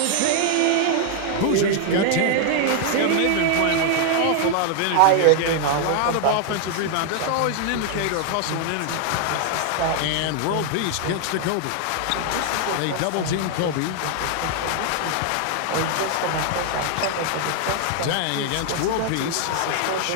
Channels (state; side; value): different; both; correlation 0.00